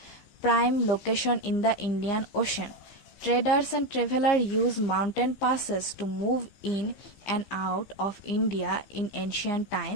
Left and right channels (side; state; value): right; late; 15 ms